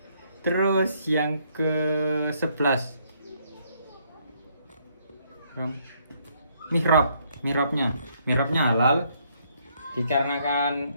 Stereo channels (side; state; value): both; inverted; correlation -0.70